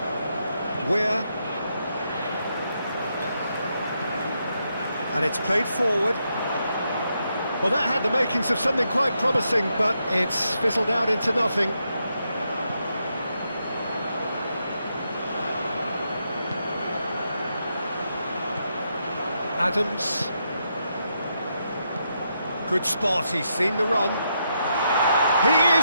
Where? And it's played forward. Well, that had the makings of something quite promising, but it's fizzled out into nothing. Adams. Good spot, he's seen the run. He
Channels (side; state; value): both; inverted; correlation -0.81